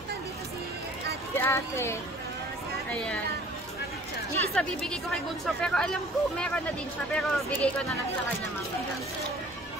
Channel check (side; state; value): both; normal; correlation 0.51